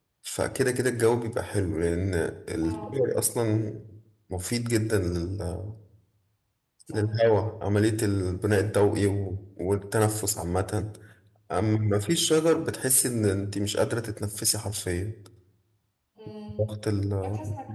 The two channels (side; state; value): both; identical; correlation 1.00